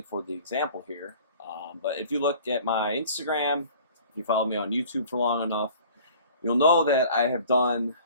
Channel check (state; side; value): inverted; both; correlation -0.48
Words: for the example here. But if you look at my Instagram, if you follow me on YouTube for long enough, you'll know that I have done